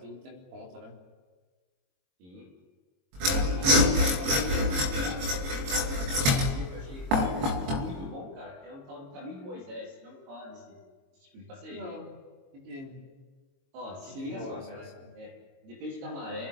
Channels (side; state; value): left; late; 22 ms